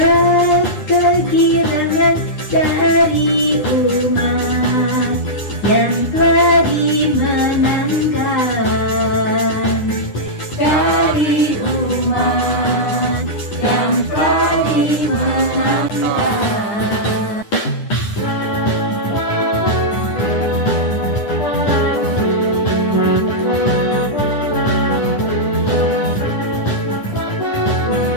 kegirangan dari umat yang telah dimenangkan, dari umat yang telah dimenangkan.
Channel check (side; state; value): right; late; 9.8 ms